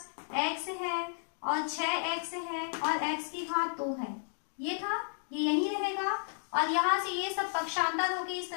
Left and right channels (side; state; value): right; silent; digital silence